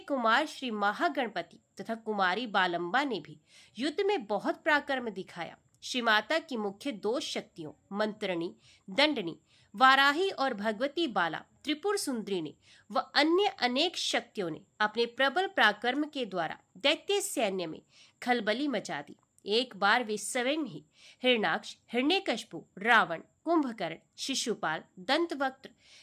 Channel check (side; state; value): both; identical; correlation 1.00